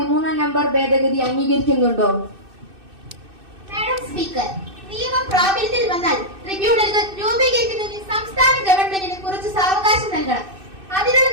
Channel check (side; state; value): left; late; 2.6 ms